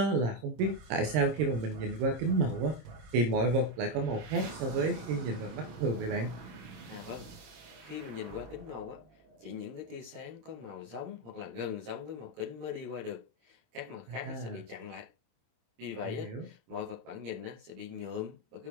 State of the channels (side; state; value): left; late; 26 ms